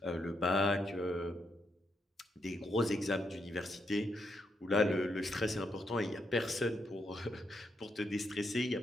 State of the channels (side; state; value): both; normal; correlation 0.80